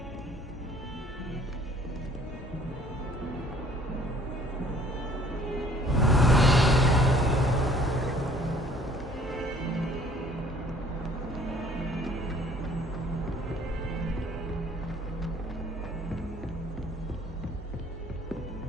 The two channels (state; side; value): normal; both; correlation 0.56